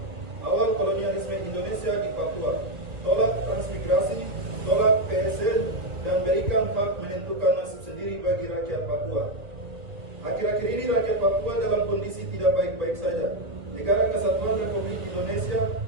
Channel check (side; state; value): left; late; 1.9 ms